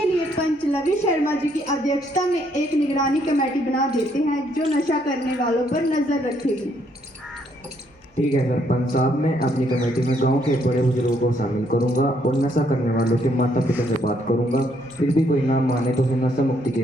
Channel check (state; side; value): normal; both; correlation 0.70